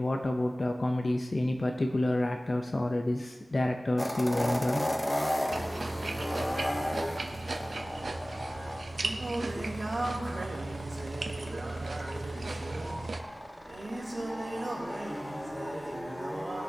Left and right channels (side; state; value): both; normal; correlation 0.97